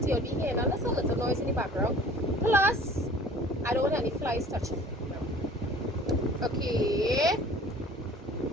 You'll be hearing a little noise in the background. Plus, I don't want any flies touching. Okay.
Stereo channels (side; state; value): both; normal; correlation 0.47